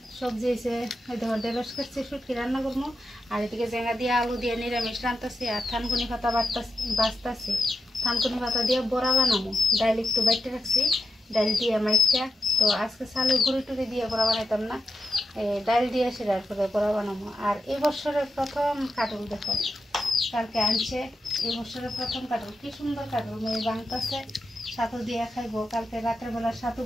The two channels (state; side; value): normal; both; correlation 0.87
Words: সবজি এসে দেখো ঢেঁড়স কাটছি, শুটকি রান্না করবো। আর এদিকে জেঙ্গা দিয়ে আলু দিয়ে নিরামিষ রান্তাছি আর থানকুনি পাতা বাঁচতাছি। থানকুনি পাতা দিয়ে বড়া বানাবো। ডাইল একটু বাইটে রাখছি, ডাইল দিয়ে মাইকা। তো আজকে চালের গুঁড়ি টুড়ি দিয়ে বড়া বানাইতাম না, ডাইল দিয়ে সেটার করে বড়া বানাবো। আর এই বছরের প্রথম কাটল দেখো, কালকে আনছে। এই বছরের প্রথম কাটল, কি সুন্দর কাটল মেয়ে বাংতাছে। ছাতু দিয়ে খাইবো। কালকে রাতের বেলা ছাতু